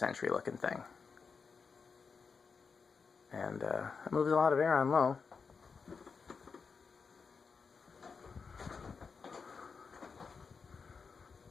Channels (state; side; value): quieter; right; 5.4 dB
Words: looking thing. And it moves a lot of air on low.